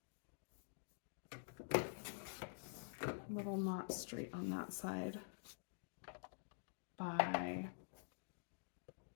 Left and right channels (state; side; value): silent; right; digital silence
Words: little not straight on that side, by,